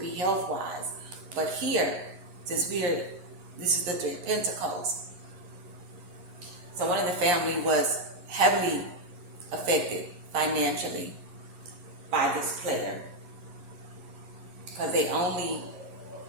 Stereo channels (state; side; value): late; left; 11 ms